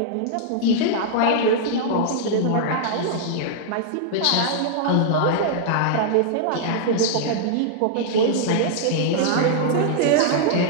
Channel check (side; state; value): both; different; correlation -0.01